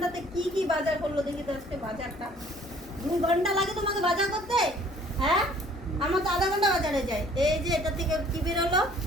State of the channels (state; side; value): normal; both; correlation 0.56